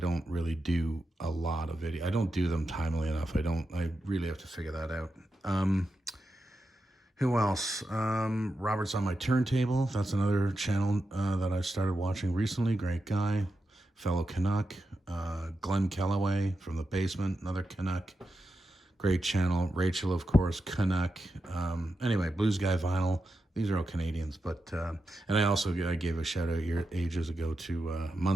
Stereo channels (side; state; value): both; normal; correlation 0.88